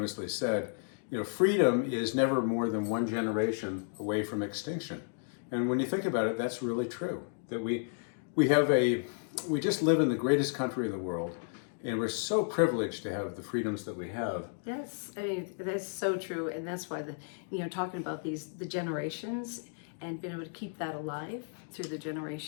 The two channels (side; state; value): right; silent; 56 dB below the other